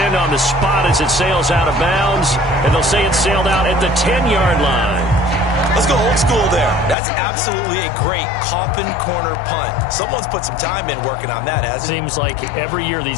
on the spot as it sails out of bounds. And they'll say it sailed out at the 10-yard line. Let's go old school there. That's absolutely a great coffin corner punt. Someone's put some time in working on that, hasn't it? Seems like every year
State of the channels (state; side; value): drops out; right; at 7.0 s